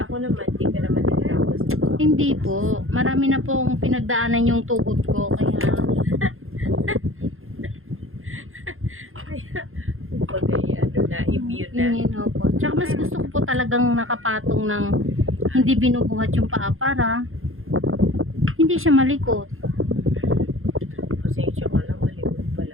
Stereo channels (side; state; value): left; late; 0.60 ms